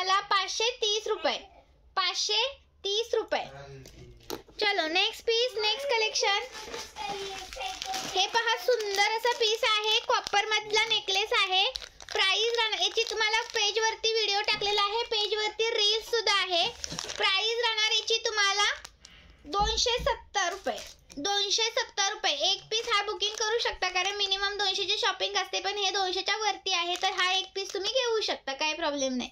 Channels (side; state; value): both; identical; correlation 1.00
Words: 530 रुपये, 530 रुपये. चलो नेक्स्ट पीस, नेक्स्ट कलेक्शन. हे पहा, सुंदर असा पीस आहे, कॉपर मधला नेकलेस आहे. प्राइस राहणार याची तुम्हाला पेज वरती व्हिडिओ टाकलेला आहे, पेज वरती रील्स सुद्धा आहे. प्राइस राहणार याची तुम्हाला 270 रुपये, 270 रुपये. एक पीस हा बुकिंग करू शकता, कारण मिनिमम 200ची शॉपिंग असते, पण हे 200च्या वरती आहे, तर हा एक पीस तुम्ही घेऊ शकता, काही प्रॉब्लेम नाही.